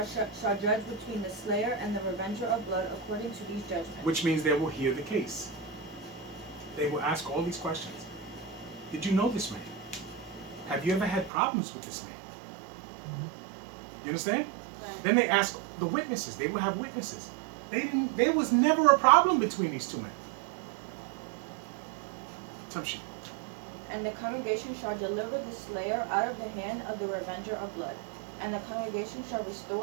judge between the slayer and the revenger of blood according to these judgments. Which means they will hear the case. They will ask all these questions. Did you know this man? Have you ever had problems with this man? You understand? Right. Then they ask the witnesses. They will have witnesses. There was never a problem between these two men. Assumption. And the congregation shall deliver the slayer out of the hand of the revenger of blood. And the congregation shall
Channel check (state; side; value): drops out; left; at 11.3 s